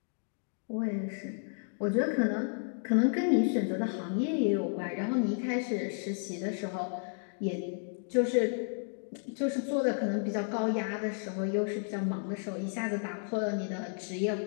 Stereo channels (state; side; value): silent; right; 56 dB below the other